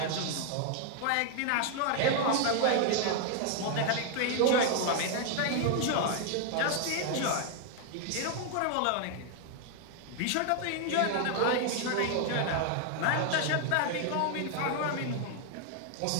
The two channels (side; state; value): both; different; correlation 0.00